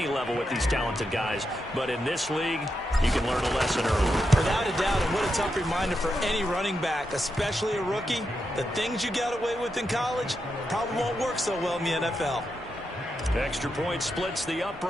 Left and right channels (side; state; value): both; normal; correlation 0.85